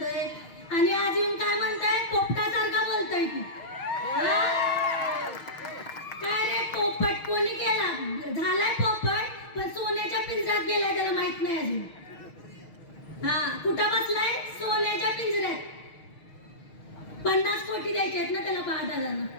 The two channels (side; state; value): right; late; 6.4 ms